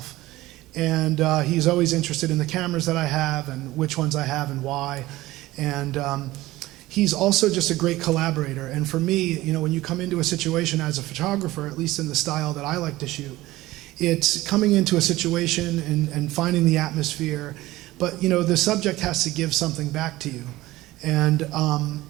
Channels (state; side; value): quieter; left; 17.7 dB